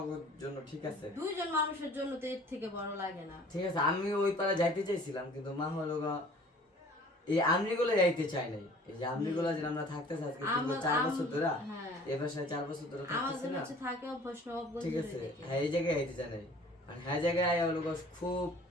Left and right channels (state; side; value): normal; both; correlation 0.50